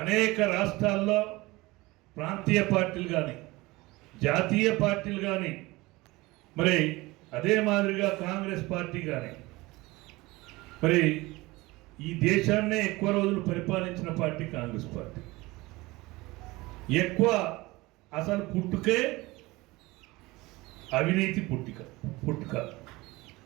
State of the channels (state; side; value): quieter; left; 21.2 dB